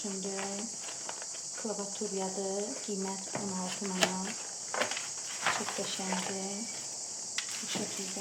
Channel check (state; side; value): identical; both; correlation 1.00